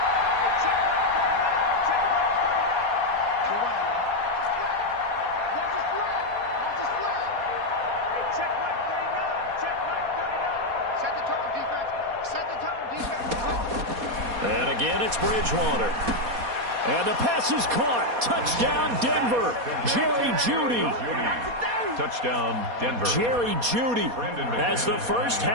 And again, it's Bridgewater. And the pass is caught. Touchdown, Denver. Jerry Jeudy. Touchdown, Denver. Jerry Jeudy as the first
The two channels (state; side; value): late; left; 4.2 ms